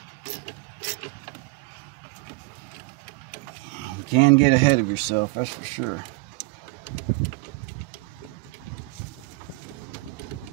can get ahead of yourself, that's for sure.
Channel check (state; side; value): quieter; left; 26.1 dB